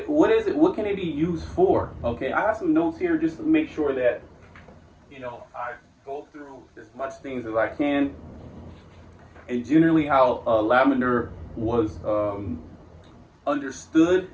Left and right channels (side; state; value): both; identical; correlation 1.00